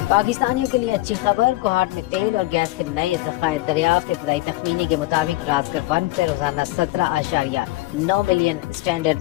پاکستانیوں کے لیے اچھی خبر. کوہاٹ میں تیل اور گیس کے نئے ذخائر دریافت. ابتدائی تخمینے کے مطابق رازکر 1 سے روزانہ 17.9 ملین اسٹینڈرڈ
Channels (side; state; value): right; quieter; 19.0 dB